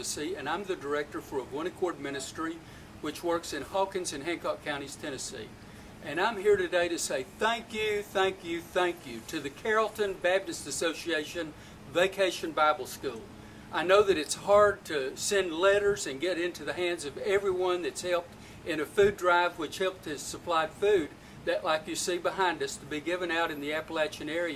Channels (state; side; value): identical; both; correlation 1.00